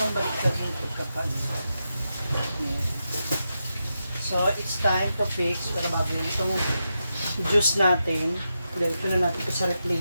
baliktad yung pagkapan. So, it's time to fix para mabili itong juice natin. Ilagay ko na natin ito sa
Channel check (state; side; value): inverted; both; correlation -0.88